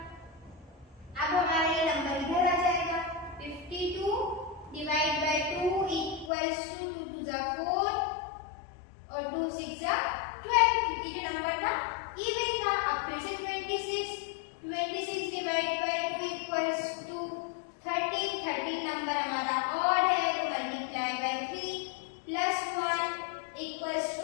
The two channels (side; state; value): right; drops out; at 6.3 s